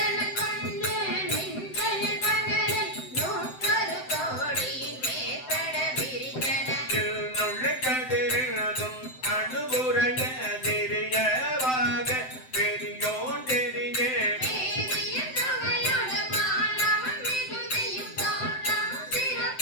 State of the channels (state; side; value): late; right; 7.8 ms